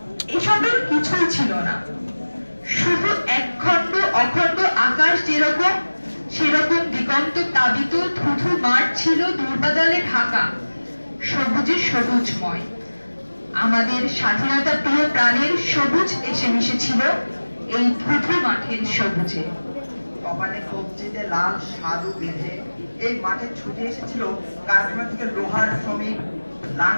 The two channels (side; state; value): both; inverted; correlation -1.00